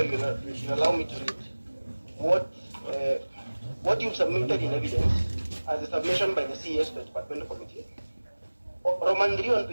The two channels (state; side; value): inverted; both; correlation -1.00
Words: you allow me to read what you've submitted in evidence as a submission by the CS to the Department Committee. Roman 3 on